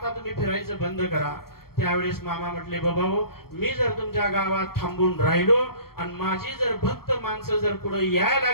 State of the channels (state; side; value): late; right; 0.94 ms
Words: तुम्ही फिरायचं बंद करा. त्यावेळेस मामा म्हटले, बाबा मी जर तुमच्या गावात थांबून राहिलो आणि माझी जर भक्त माणसं जर पुढे यायला